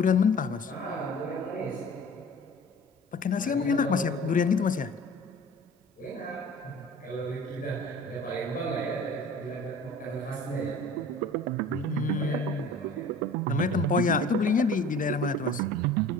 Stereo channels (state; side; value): normal; both; correlation 0.44